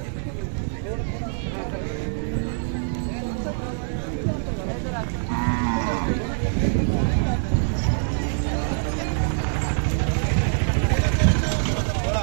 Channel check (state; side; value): silent; left; 62 dB below the other